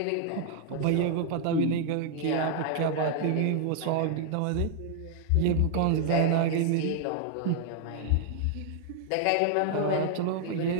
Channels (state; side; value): different; both; correlation 0.00